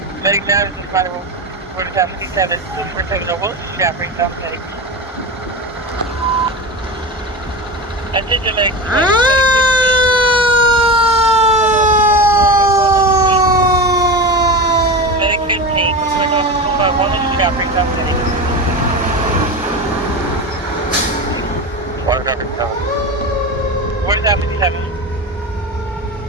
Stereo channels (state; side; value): normal; both; correlation 0.25